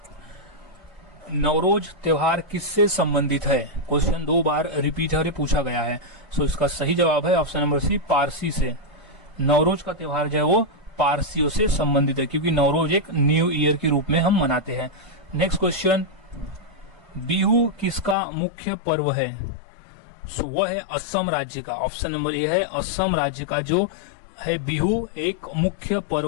नवरोज त्योहार किससे संबंधित है? क्वेश्चन 2 बार रिपीट है और पूछा गया है। सो इसका सही जवाब है ऑप्शन नंबर सी, पारसी से। नवरोज का त्योहार जो है वो पारसियों से संबंधित है, क्योंकि नवरोज एक न्यू ईयर के रूप में हम मनाते हैं। नेक्स्ट क्वेश्चन, बिहू किसका मुख्य पर्व है? सो वह है असम राज्य का। ऑप्शन नंबर ए है, असम राज्य का जो है बिहू एक मुख्य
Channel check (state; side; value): drops out; right; at 18.2 s